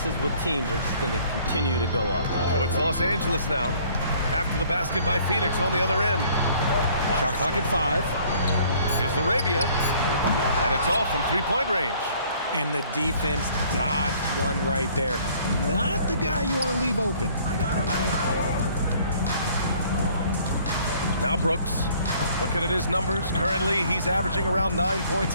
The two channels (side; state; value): both; inverted; correlation -0.57